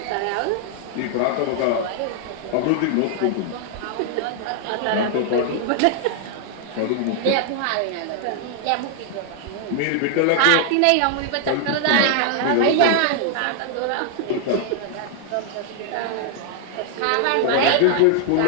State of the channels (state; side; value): different; both; correlation 0.00